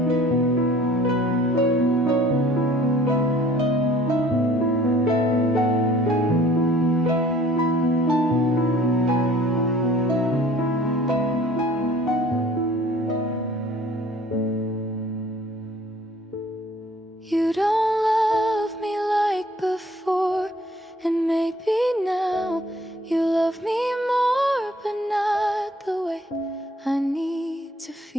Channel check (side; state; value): both; normal; correlation 0.53